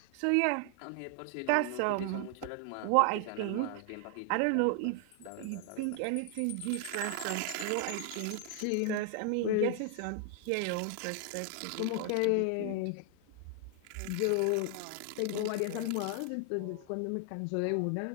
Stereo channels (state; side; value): different; both; correlation 0.00